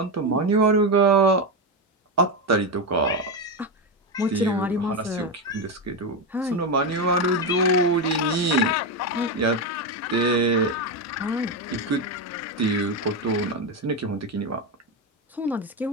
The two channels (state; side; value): normal; both; correlation 0.11